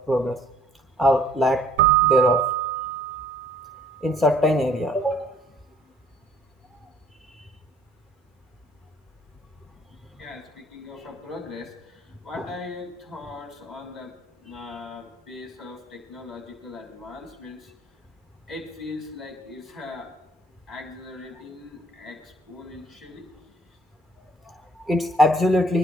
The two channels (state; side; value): normal; both; correlation 0.57